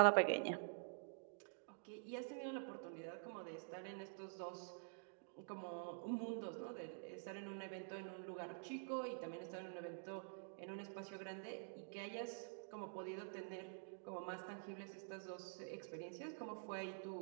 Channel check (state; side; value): silent; left; digital silence